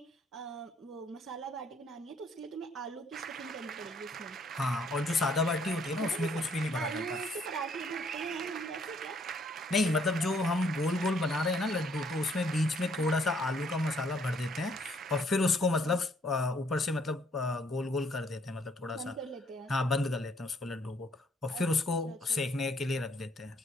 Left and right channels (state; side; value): normal; both; correlation 0.66